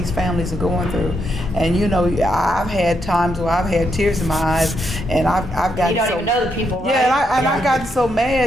families are going through. And you know, I've had times where I've had tears in my eyes, and I've gotten You don't so, even know the people, right? yeah, and I gotten so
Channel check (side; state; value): both; normal; correlation 0.80